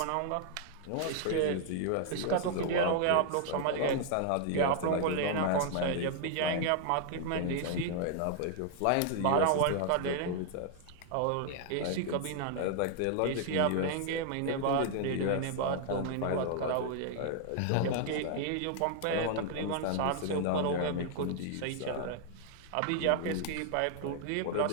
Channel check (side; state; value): both; different; correlation 0.00